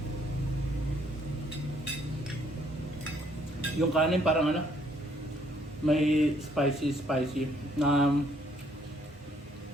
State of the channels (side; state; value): both; normal; correlation 0.66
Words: Yung kanin parang may spicy na